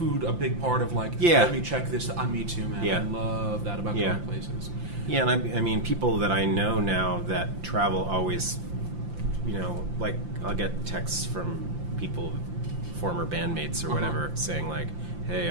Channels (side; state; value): left; late; 5.8 ms